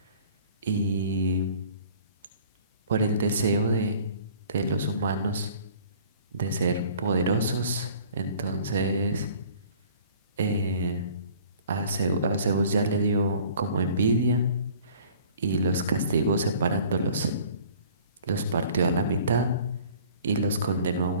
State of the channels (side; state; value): both; inverted; correlation -0.51